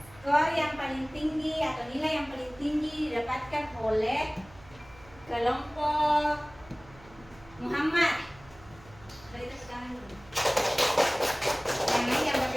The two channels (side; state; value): right; noise; hum, 23 dB below the sound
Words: Skor yang paling tinggi atau nilai yang paling tinggi didapatkan oleh kelompok Muhammad. Beri tepuk tangan dulu. Yang lain yang